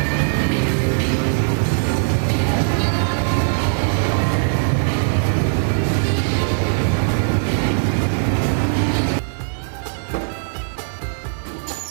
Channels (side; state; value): left; silent; digital silence